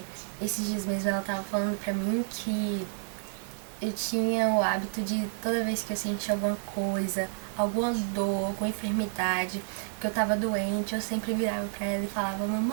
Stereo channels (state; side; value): silent; left; 56 dB below the other